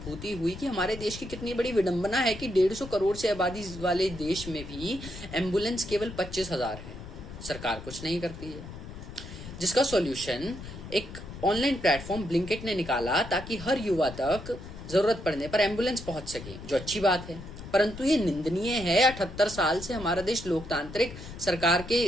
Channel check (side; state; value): left; noise; rumble, 13 dB below the sound